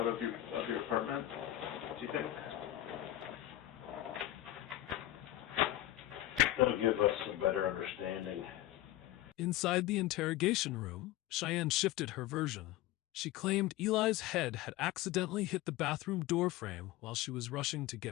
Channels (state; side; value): quieter; right; 15.0 dB